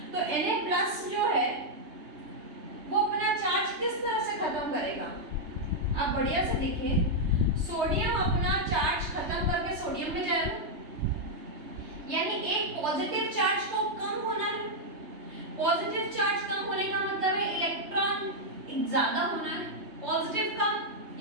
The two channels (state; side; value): late; left; 3.3 ms